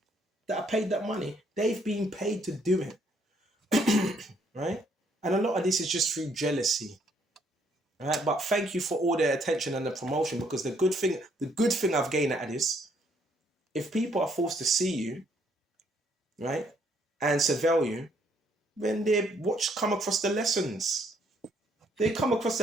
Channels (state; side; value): normal; both; correlation 0.68